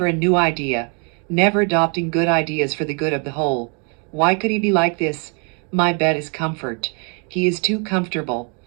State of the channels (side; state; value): left; quieter; 37.3 dB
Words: a new idea. Never adopting good ideas for the good of the whole. Why could he be like this? My bet is comfort. He is too comfortable.